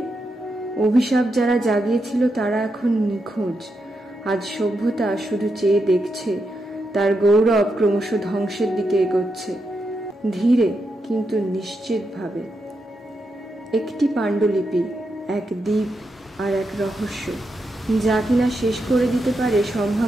অভিশাপ যারা জাগিয়েছিল তারা এখন নিখোঁজ। আজ সভ্যতা শুধু চেয়ে দেখছে, তার গৌরব ক্রমশ ধ্বংসের দিকে এগোচ্ছে, ধীরে কিন্তু নিশ্চিতভাবে। একটি পাণ্ডুলিপি, এক দ্বীপ আর এক রহস্য, যা কিনা শেষ করে দিতে পারে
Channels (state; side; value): normal; both; correlation 0.84